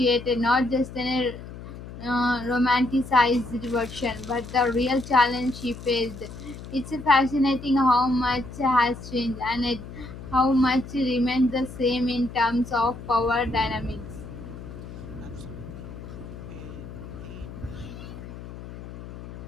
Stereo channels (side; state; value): left; noise; hum, 13 dB below the sound